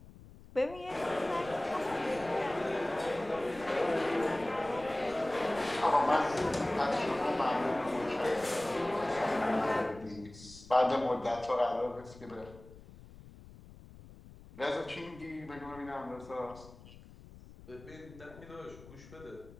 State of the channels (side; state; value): left; noise; rumble, 19 dB below the sound